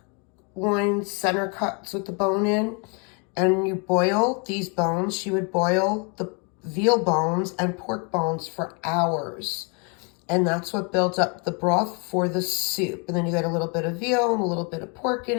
loin center cuts with the bone in. And you boil these bones. She would boil the veal bones and pork bones for hours. And that's what builds up the broth for the soup. And then you get a little bit of veal and a little bit of pork in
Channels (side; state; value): right; quieter; 34.7 dB